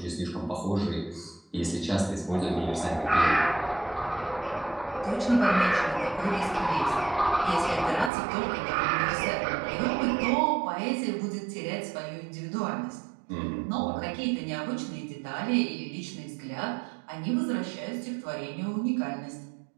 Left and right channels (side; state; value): left; drops out; at 8.1 s